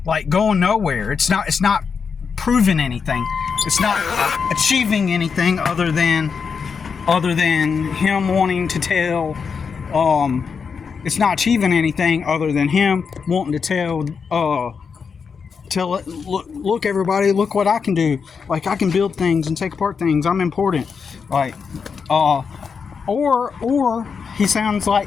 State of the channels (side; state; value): right; quieter; 5.9 dB